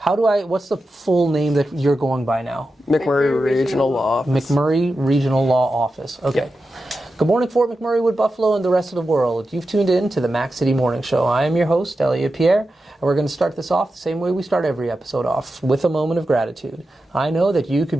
what's the full name that you're going by now? McMurray Regional Law Office. McMurray Regional Law Office. Okay. Yeah. Good morning, Fort McMurray, Wood Buffalo, and the rest of the world. You've tuned in to the Mac City Morning Show. I am your host, Elliot Pierre, and we're going to start this off the same way we start every episode off, with a moment of gratitude. I know that you could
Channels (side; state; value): both; normal; correlation 0.91